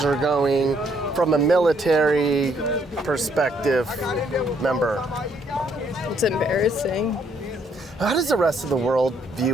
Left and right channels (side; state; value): both; normal; correlation 0.69